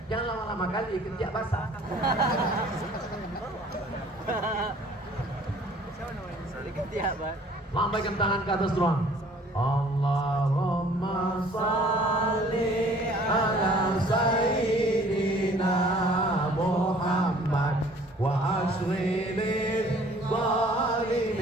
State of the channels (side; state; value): both; normal; correlation 0.54